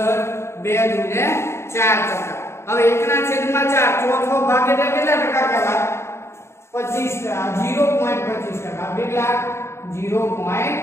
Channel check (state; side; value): late; right; 0.13 ms